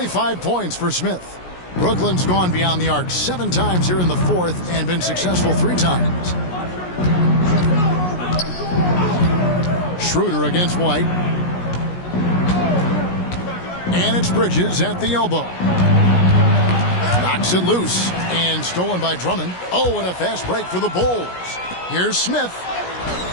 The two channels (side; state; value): right; late; 17 ms